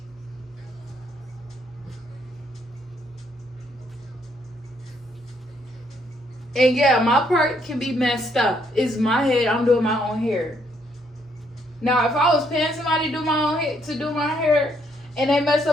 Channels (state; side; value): normal; both; correlation 0.71